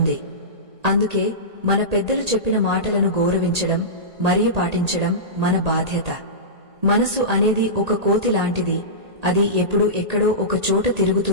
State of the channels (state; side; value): late; left; 1.8 ms